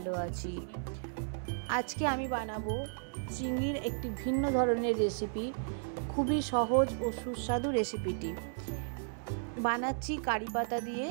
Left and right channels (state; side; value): silent; left; 55 dB below the other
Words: आछि। आजके आमी बानाबो चिंगड़िर एकटी भिन्न धरनेर रेसिपि। खूबई सहज और सुस्वादु रेसिपिटी बानाच्छि काরি पाता दिए